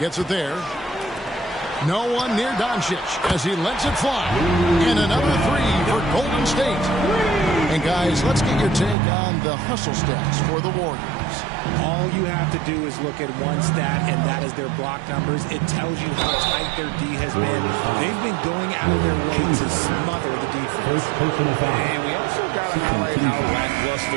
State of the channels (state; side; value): drops out; left; at 9.0 s